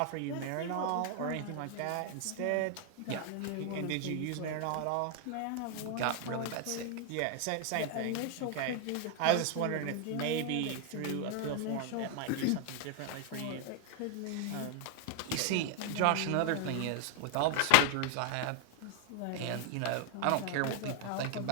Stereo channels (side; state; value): both; different; correlation 0.00